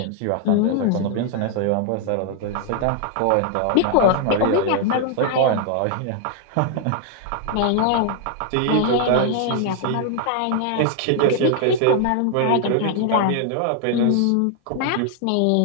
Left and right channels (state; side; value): different; both; correlation 0.00